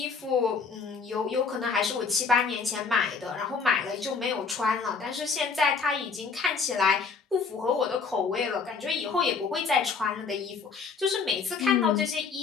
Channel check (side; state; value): right; quieter; 5.2 dB